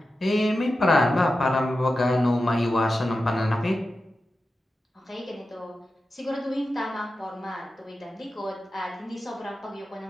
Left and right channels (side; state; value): both; normal; correlation 0.92